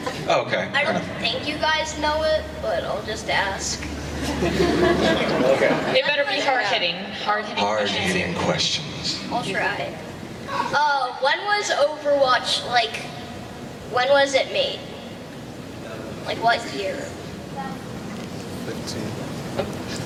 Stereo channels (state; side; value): identical; both; correlation 1.00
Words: Oh, okay. I don't think you guys know it, but I'll just ask. Okay. They better be hard-hitting. Hard-hitting Hard-hitting questions. I'll try. When was Overwatch, when was it made? Like what year?